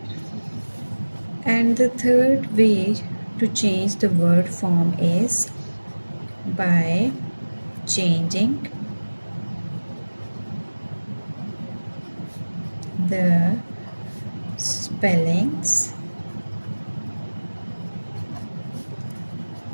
And the third way to change the word form is by changing the spellings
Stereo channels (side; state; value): both; inverted; correlation -1.00